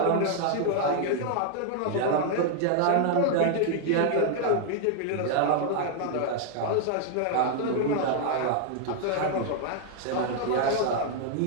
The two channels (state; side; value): different; both; correlation 0.00